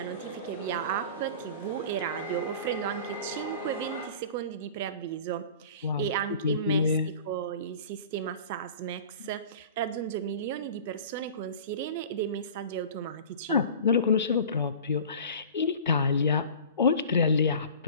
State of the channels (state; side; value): inverted; both; correlation -0.40